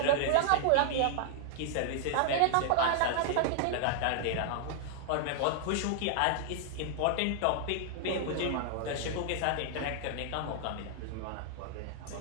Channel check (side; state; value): both; different; correlation 0.00